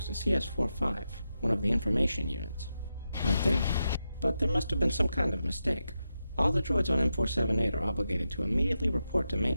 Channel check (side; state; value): both; inverted; correlation -0.88